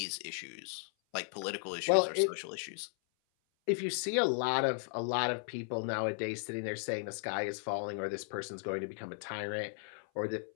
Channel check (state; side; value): silent; right; 54 dB below the other